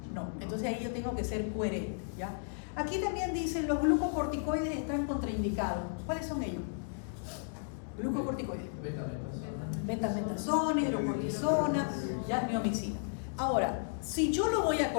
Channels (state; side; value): silent; right; digital silence